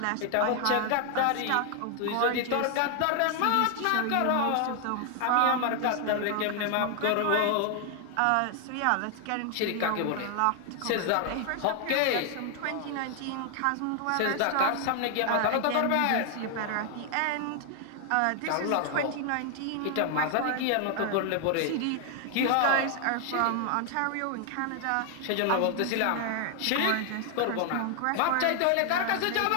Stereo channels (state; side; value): different; both; correlation 0.00